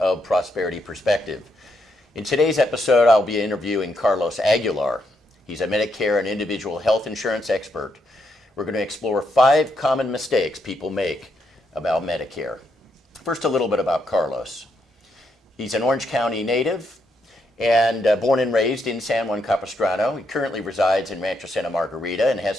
Prosperity Perspective. In today's episode, I'll be interviewing Carlos Aguilar. He's a Medicare and individual health insurance expert. We're going to explore 5 common mistakes people make about Medicare. First, a little bit about Carlos. He's an Orange County native and born and raised in San Juan Capistrano. He currently resides in Rancho Santa Margarita and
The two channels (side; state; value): both; normal; correlation 0.79